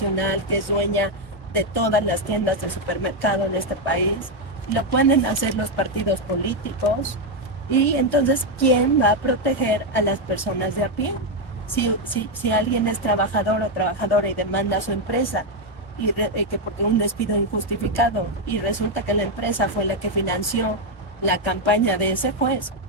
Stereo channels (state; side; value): normal; both; correlation 0.03